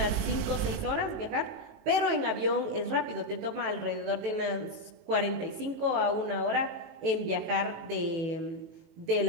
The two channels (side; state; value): left; late; 18 ms